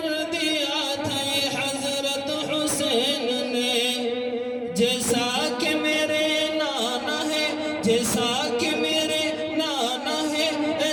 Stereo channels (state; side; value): identical; both; correlation 1.00